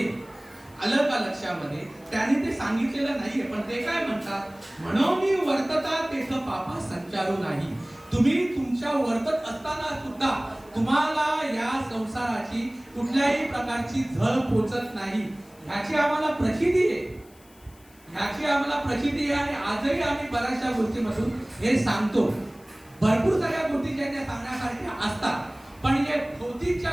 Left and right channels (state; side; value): noise; left; hiss, 27 dB below the sound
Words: आलं का लक्षामध्ये? त्याने ते सांगितलेलं नाहीये, पण ते काय म्हणतात, म्हणून वर्तता तेथ पापा संचारू नाही. तुम्ही तुमच्या वर्तत असताना सुद्धा तुम्हाला या संसाराची कुठल्याही प्रकारची झळ पोचत नाही. ह्याची आम्हाला प्रचिती आहे, ह्याची आम्हाला प्रचिती आहे. आणि आजही आम्ही बऱ्याचशा गोष्टीमधून हे सांगतो. भरपूर साऱ्या गोष्टी ज्या त्या सांगण्यासारख्या असतात, पण या भौतिक ज्या